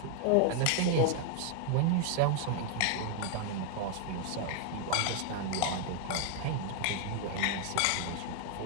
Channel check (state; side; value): different; both; correlation 0.00